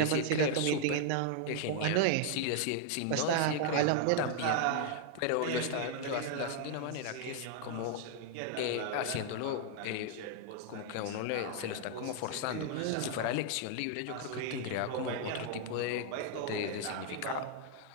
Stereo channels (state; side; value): different; both; correlation -0.01